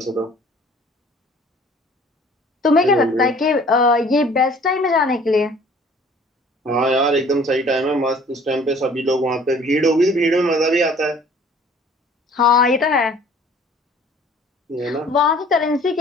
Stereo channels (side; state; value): both; normal; correlation 0.53